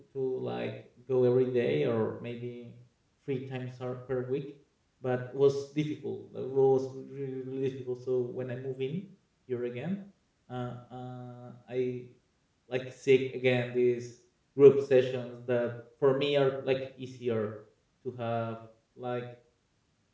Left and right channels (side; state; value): both; identical; correlation 1.00